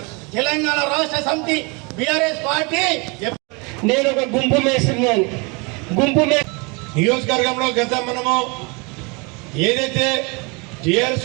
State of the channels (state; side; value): quieter; left; 29.9 dB